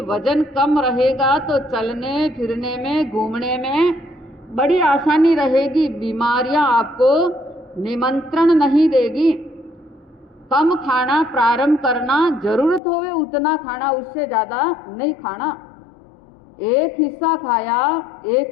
वजन कम रहेगा, तो चलने फिरने में, घूमने में बड़ी आसानी रहेगी, बीमारियां आपको निमंत्रण नहीं देगी। कम खाना प्रारंभ करना, जरूरत होवे उतना खाना, उससे ज़्यादा नहीं खाना। एक हिस्सा खाया,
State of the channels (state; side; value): drops out; right; at 12.8 s